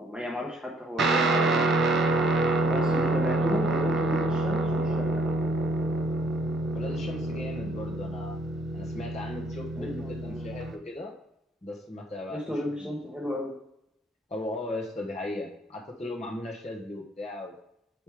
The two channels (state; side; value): normal; both; correlation 0.65